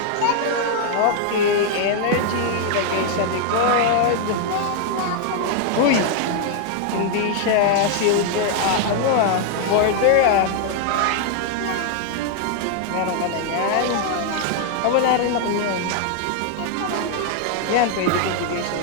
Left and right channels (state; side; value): different; both; correlation 0.00